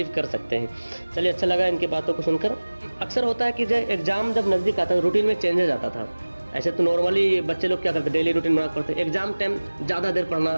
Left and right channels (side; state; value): both; inverted; correlation -1.00